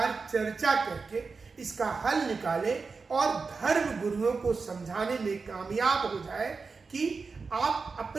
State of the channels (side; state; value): left; quieter; 4.6 dB